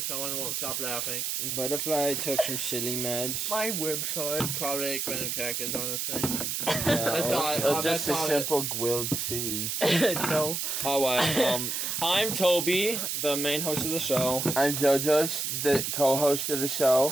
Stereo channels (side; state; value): right; noise; hiss, 1 dB below the sound